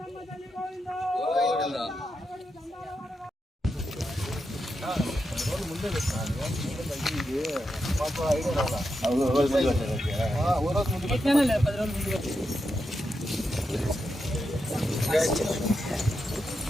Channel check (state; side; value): normal; both; correlation 0.86